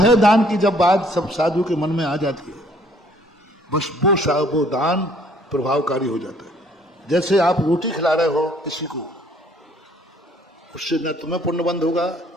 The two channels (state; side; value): normal; both; correlation 0.61